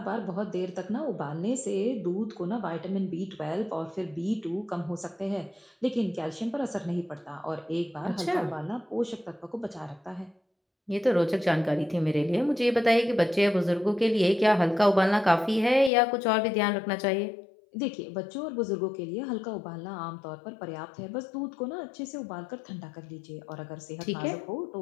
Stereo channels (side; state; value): right; drops out; at 15.9 s